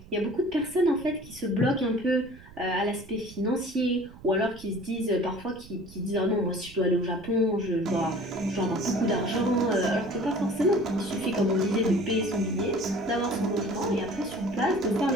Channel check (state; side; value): noise; right; rumble, 19 dB below the sound